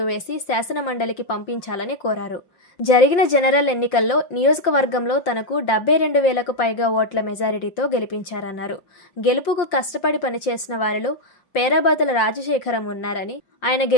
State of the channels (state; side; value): late; right; 5.7 ms